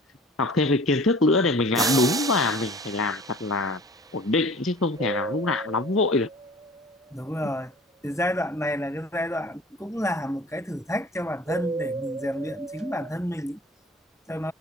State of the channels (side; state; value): both; normal; correlation 0.45